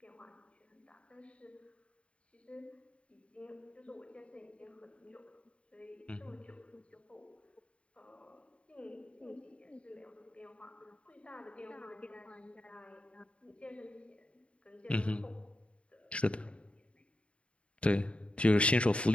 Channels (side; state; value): right; late; 0.060 ms